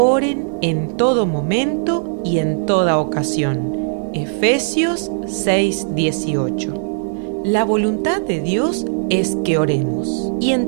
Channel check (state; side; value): silent; left; digital silence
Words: en todo momento y en toda ocasión. Efesios 6:18. La voluntad de Dios es que oremos. Y